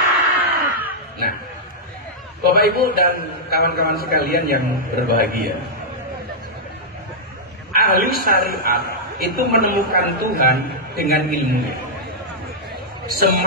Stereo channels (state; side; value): normal; both; correlation -0.09